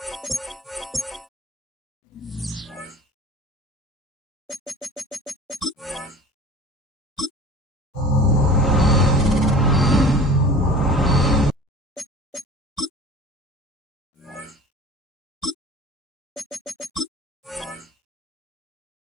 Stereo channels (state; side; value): normal; both; correlation 0.40